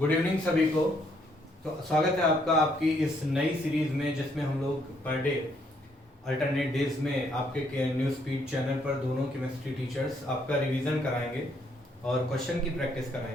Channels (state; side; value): normal; both; correlation 0.70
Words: Good evening सभी को। तो स्वागत है आपका आपकी इस नई सीरीज में जिसमें हम लोग पर डे अल्टरनेट डेज में आपके न्यूज स्पीड चैनल पर दोनों केमिस्ट्री टीचर्स आपका रिवीजन कराएंगे और क्वेश्चन की प्रैक्टिस